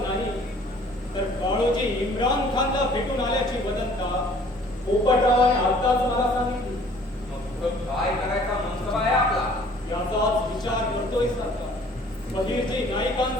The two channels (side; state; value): both; normal; correlation 0.54